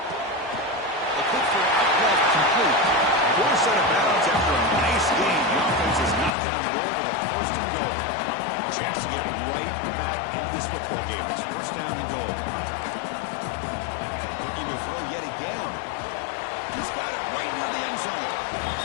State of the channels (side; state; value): right; drops out; at 6.3 s